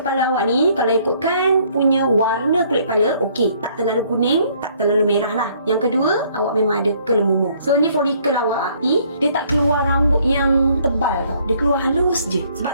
awak ni, kalau ikutkan punya warna kulit kepala, okey, tak terlalu kuning, tak terlalu merah lah. Yang kedua, awak memang ada kelemumur. So ni folikel awak ni, dia tak keluar rambut yang tebal tau. Dia keluar halus je.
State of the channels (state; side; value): inverted; both; correlation -0.63